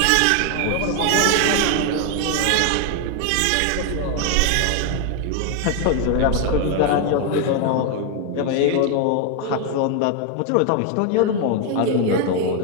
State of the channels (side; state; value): both; different; correlation 0.01